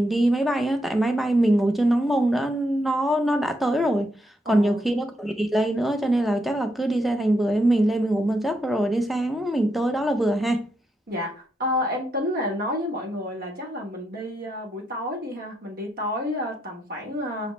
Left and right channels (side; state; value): both; normal; correlation 0.81